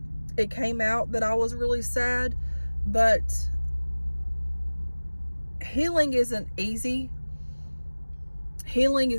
it came out that I was really sad, but healing isn't easy. Healing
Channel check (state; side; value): inverted; both; correlation -1.00